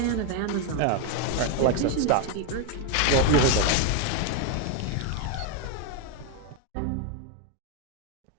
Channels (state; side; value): different; both; correlation 0.01